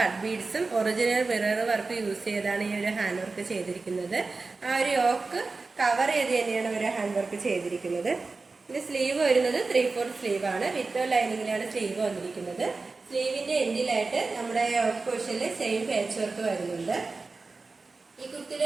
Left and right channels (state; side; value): quieter; left; 3.9 dB